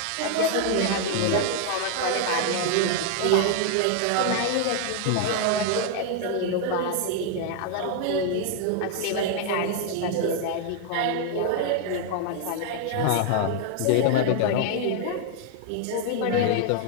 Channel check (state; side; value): different; both; correlation 0.00